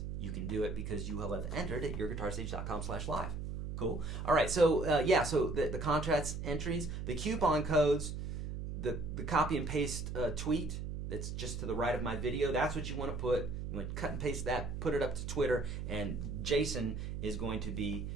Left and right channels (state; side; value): noise; right; hum, 5 dB below the sound